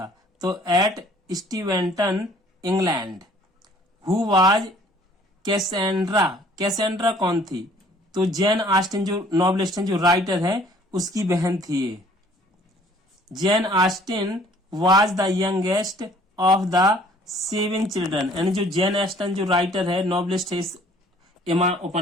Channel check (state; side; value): normal; both; correlation 0.56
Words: तो at Steventon England. Who was Cassandra, Cassandra कौन थी? तो जैन ऑस्टिन जो नॉवलिस्ट हैं, जो राइटर है, उसकी बहन थी ये। Jain Austen was the youngest of the 7 children, यानी जो जैन ऑस्टिन जो राइटर है, नॉवलिस्ट है इस एमा